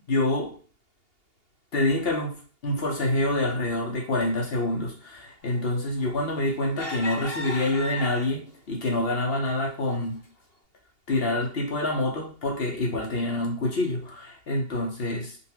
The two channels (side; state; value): right; late; 2.8 ms